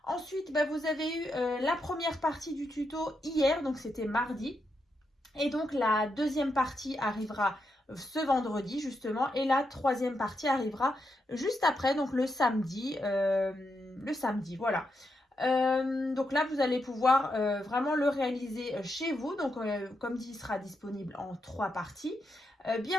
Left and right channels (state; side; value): normal; both; correlation 0.83